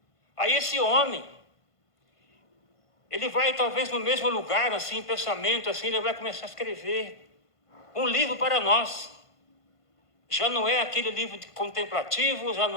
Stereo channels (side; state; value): right; late; 1.5 ms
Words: Aí esse homem, ele vai talvez no mesmo lugar, assim, pensamento, assim, ele vai começar a escrever um livro para nós. Já não é aquele livro contemplativo, já